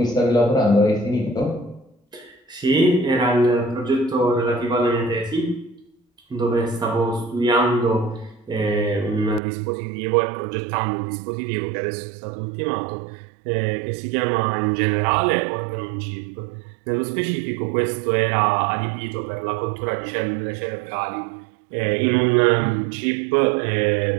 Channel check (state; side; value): drops out; left; at 9.4 s